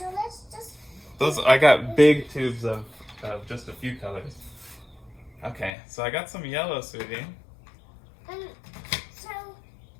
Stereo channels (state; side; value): drops out; right; at 5.7 s